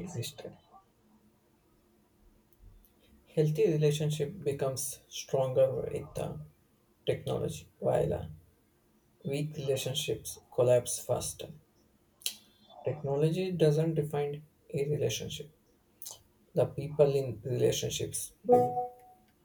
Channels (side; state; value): both; identical; correlation 1.00